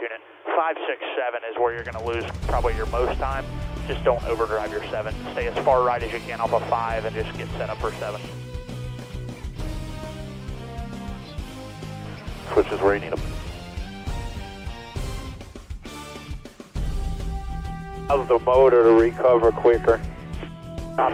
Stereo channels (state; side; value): identical; both; correlation 1.00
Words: it. 5, 6, 7 is where you're going to lose probably your most time. Just don't overdrive your 7. Stay as far right as you can off a 5 and just get set up for 7. Switch is where you need them. How's the motor to recover quicker?